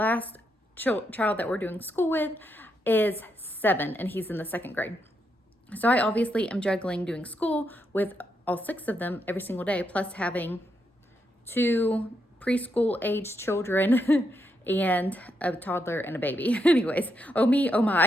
child that we're doing school with is 7, and he's in the 2nd grade. So I obviously am juggling doing school with all 6 of them every single day, plus having 2 preschool age children and a toddler and a baby. Anyways, oh me, oh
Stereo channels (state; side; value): normal; both; correlation 0.81